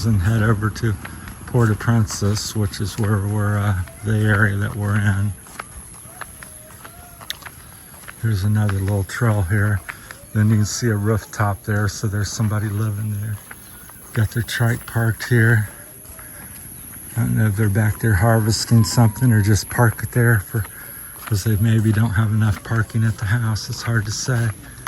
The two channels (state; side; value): identical; both; correlation 1.00